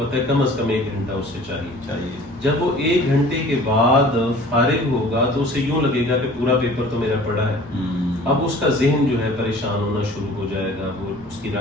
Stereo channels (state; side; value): normal; both; correlation 0.47